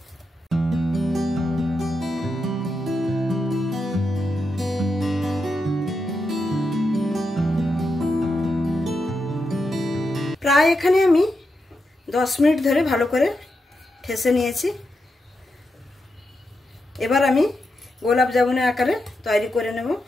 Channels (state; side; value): normal; both; correlation 0.86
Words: প্রায় এখানে আমি 10 মিনিট ধরে ভালো করে ঠেসে নিয়েছি। এবার আমি গোলাপ জামুনের আকারে তৈরি করে নেব।